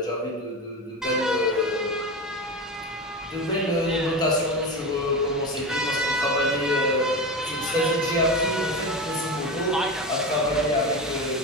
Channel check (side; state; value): both; normal; correlation 0.23